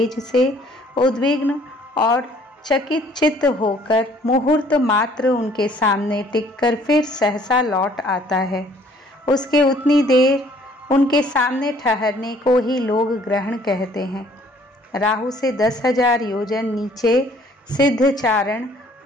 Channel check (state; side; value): normal; both; correlation 0.59